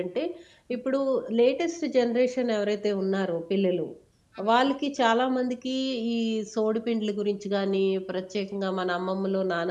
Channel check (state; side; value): identical; both; correlation 1.00